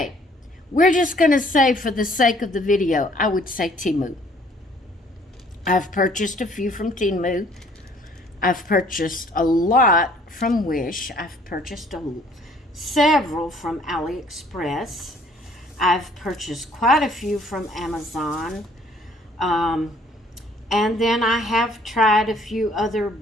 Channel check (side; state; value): both; normal; correlation 0.59